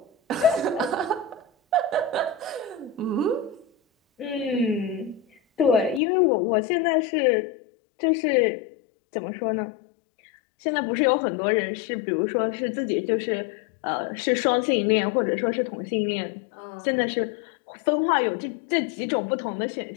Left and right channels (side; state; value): right; drops out; at 6.0 s